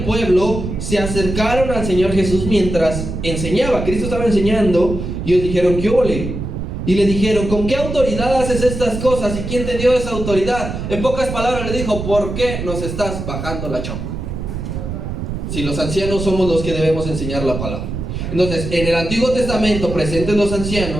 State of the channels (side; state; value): right; noise; rumble, 5 dB below the sound